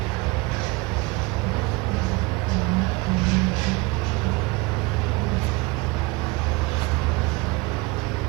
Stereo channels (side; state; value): left; quieter; 24.2 dB